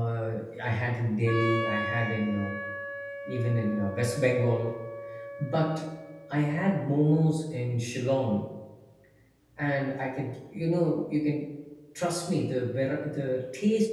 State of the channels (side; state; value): both; identical; correlation 1.00